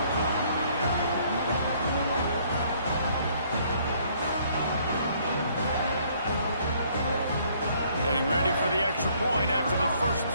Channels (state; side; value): inverted; both; correlation -0.63